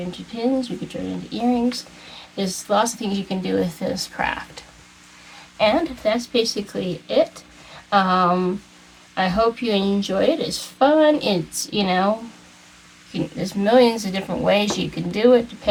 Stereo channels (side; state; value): both; identical; correlation 1.00